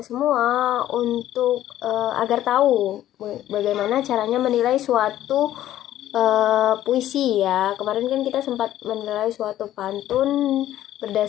semua untuk agar tahu bagaimana caranya menilai suatu puisi ya. Kemarin kan kita sempat menilai suatu pantun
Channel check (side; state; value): right; quieter; 12.9 dB